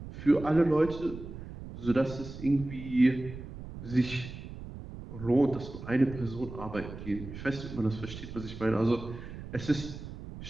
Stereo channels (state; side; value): noise; right; rumble, 11 dB below the sound